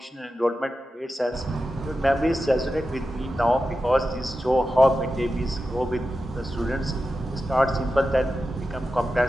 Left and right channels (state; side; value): normal; both; correlation 0.91